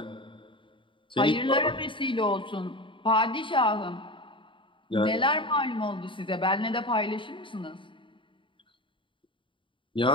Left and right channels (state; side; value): late; right; 0.24 ms